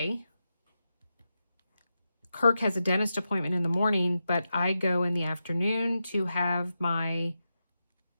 Kirk has a dentist appointment in the morning, but I go in the afternoon to have my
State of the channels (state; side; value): inverted; both; correlation -0.89